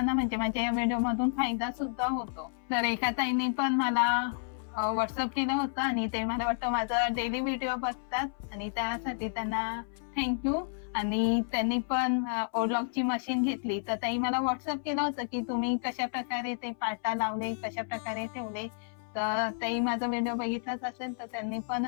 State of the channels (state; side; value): silent; right; 57 dB below the other